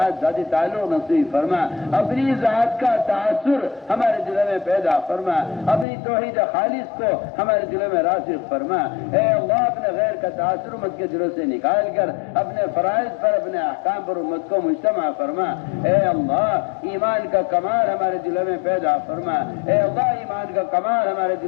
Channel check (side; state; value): right; drops out; at 5.9 s